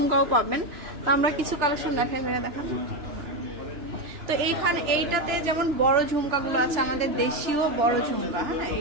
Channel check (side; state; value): left; late; 2.9 ms